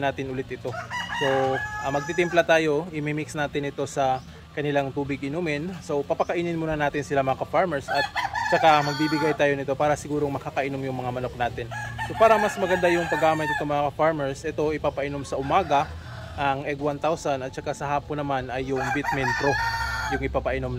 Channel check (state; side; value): identical; both; correlation 1.00